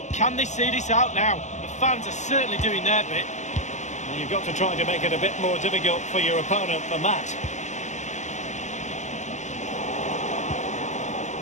can they see this out now? The fans are certainly doing their bit. Well, you've got to try to make it a bit more difficult for your opponent than that.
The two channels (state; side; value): late; right; 0.34 ms